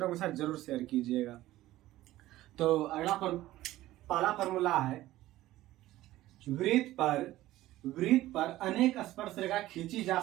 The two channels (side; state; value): left; quieter; 15.7 dB